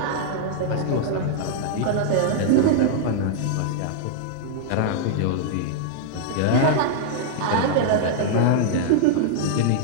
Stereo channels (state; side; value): different; both; correlation -0.01